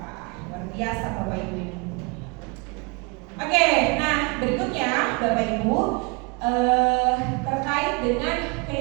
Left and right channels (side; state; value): left; quieter; 30.0 dB